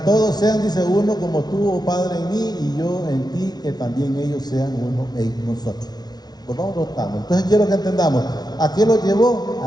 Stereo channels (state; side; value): late; right; 0.19 ms